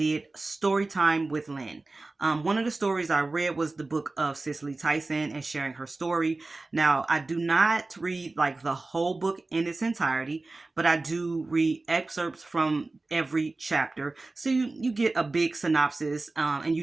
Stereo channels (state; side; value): quieter; left; 3.3 dB